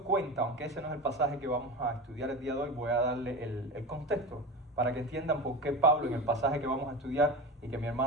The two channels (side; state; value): both; normal; correlation 0.26